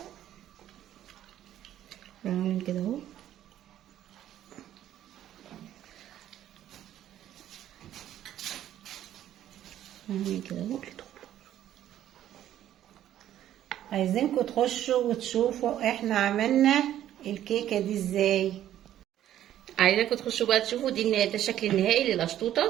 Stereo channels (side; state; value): left; quieter; 11.9 dB